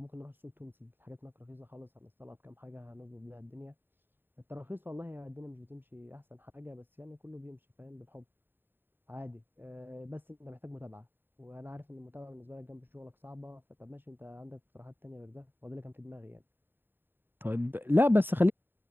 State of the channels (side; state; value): left; late; 0.097 ms